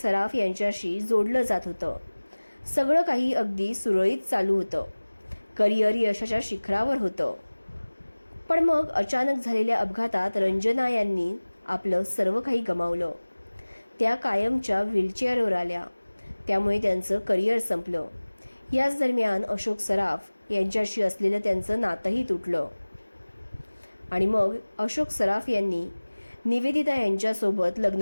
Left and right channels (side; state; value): both; inverted; correlation -1.00